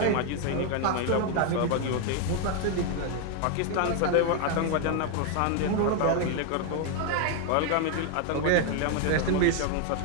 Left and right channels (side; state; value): both; different; correlation 0.01